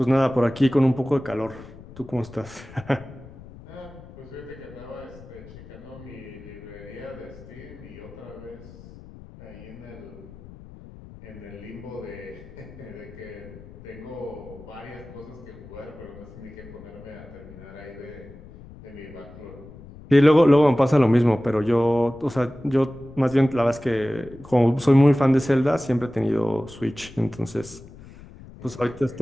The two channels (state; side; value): noise; left; rumble, 18 dB below the sound